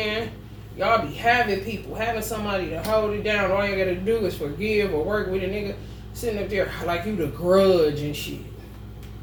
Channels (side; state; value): both; identical; correlation 1.00